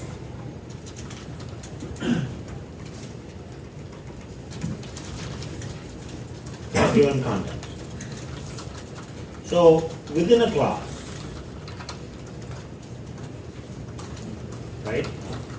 Given context. So within a class, right,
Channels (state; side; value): identical; both; correlation 1.00